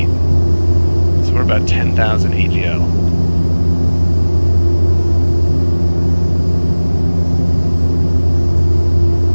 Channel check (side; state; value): both; inverted; correlation -1.00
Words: So we're about 10,000 AGL.